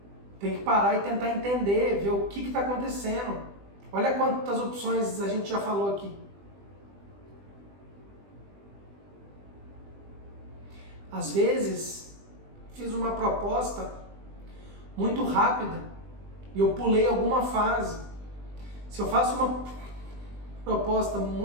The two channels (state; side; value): late; left; 20 ms